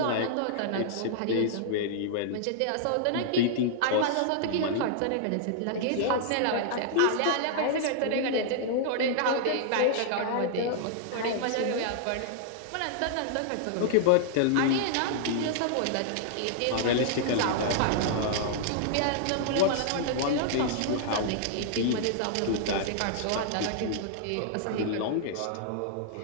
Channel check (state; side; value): different; both; correlation -0.01